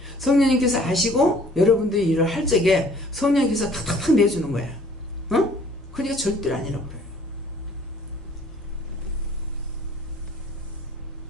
성령님께서 아시고 여러분들이 일을 할 적에 성령님께서 탁탁탁 내주는 거야. 어? 그러니까 절대로 아니라고 그래요.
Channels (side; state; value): both; normal; correlation 0.55